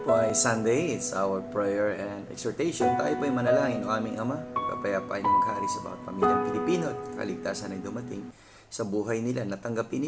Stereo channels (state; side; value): identical; both; correlation 1.00